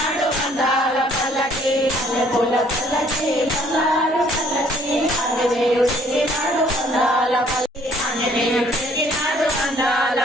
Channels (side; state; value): both; normal; correlation 0.61